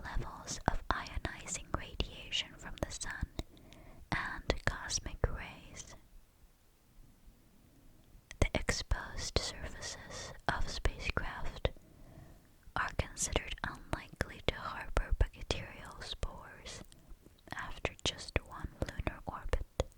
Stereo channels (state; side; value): identical; both; correlation 1.00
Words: levels of ionizing radiation from the sun and cosmic rays. The exposed surfaces of spacecraft are considered unlikely to harbor bacterial spores after just one lunar orbit.